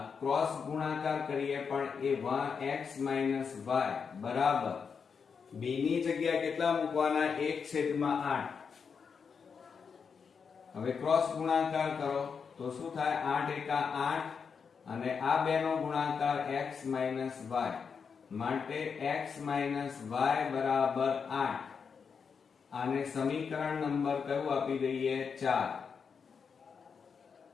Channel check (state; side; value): quieter; right; 6.1 dB